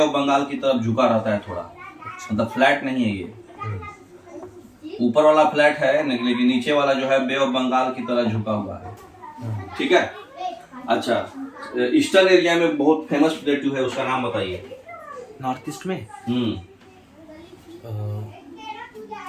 बंगाल की तरफ झुका रहता है थोड़ा, मतलब फ्लैट नहीं है ये। ऊपर वाला फ्लैट है लेकिन नीचे वाला जो है बे ऑफ बंगाल की तरह झुका हुआ है, ठीक है। अच्छा, ईस्टर्न एरिया में बहुत फेमस प्लेटू है, उसका नाम बताइए। नॉर्थ ईस्ट में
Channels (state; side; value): identical; both; correlation 1.00